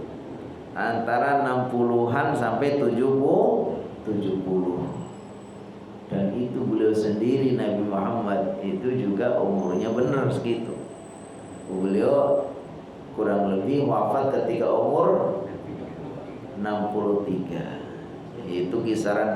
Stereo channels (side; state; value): both; identical; correlation 1.00